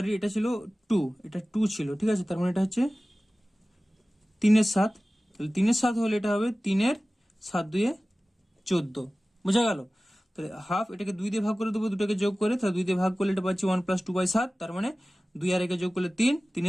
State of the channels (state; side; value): normal; both; correlation 0.97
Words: এটা ছিল 2, এটা 2 ছিল, ঠিক আছে, তার মানে এটা হচ্ছে 3 এর 7, তাহলে 3 এর 7 হলে এটা হবে 3 এর 7 2 এ 14, বোঝা গেল। তাহলে হাফ, এটাকে 2 দিয়ে ভাগ করে দেবো, দুটোকে যোগ করে, তাহলে 2 দিয়ে ভাগ করলে এটা পাচ্ছি 1 প্লাস 2/7, তার মানে 2 আর 1 যোগ করলে 3, 3